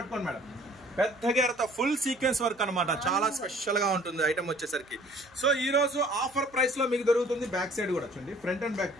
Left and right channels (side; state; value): right; noise; hum, 29 dB below the sound